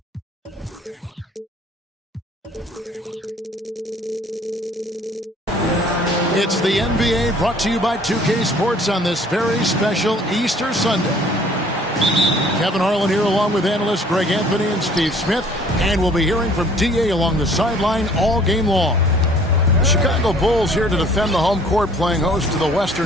the NBA brought to you by 2K Sports on this very special Easter Sunday. Kevin Harlan here along with analysts Greg Anthony and Steve Smith. And we'll be hearing from DA along the sideline all game long. The Chicago Bulls here to defend the home court, playing host to the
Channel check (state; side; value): normal; both; correlation 0.55